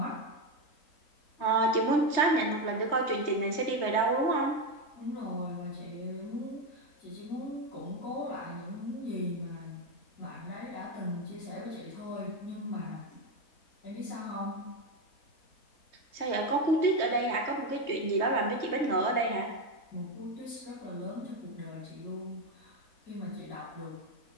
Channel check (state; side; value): late; right; 3.3 ms